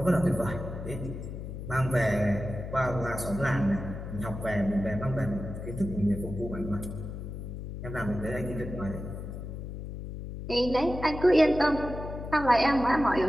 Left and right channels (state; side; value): noise; left; hum, 8 dB below the sound